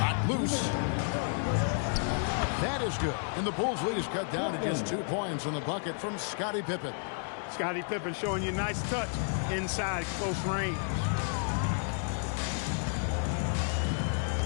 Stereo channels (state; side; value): silent; right; 57 dB below the other